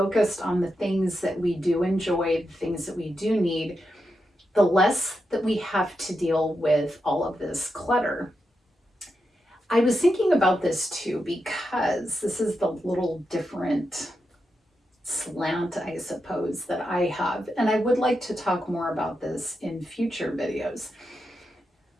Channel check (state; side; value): normal; both; correlation 0.86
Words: on the things that we do enjoy, the things that we do need, the less that we have to deal with all of this clutter. I was thinking about this too because this is the little different slant, I suppose, that I have. And I would like to talk more about this in future videos.